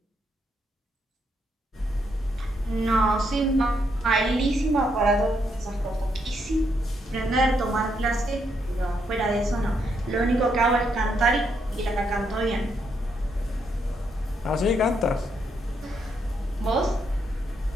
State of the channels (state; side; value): normal; both; correlation 0.77